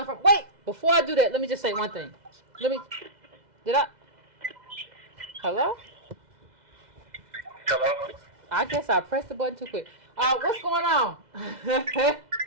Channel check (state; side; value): late; left; 2.0 ms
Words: from? Wait, before I do that, let me just say one thing. Hello? Hello? I guess I pressed the button too quick. What's going on?